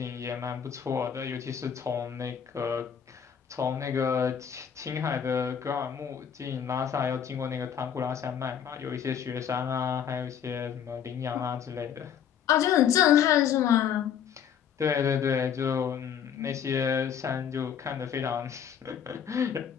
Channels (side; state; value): right; quieter; 8.3 dB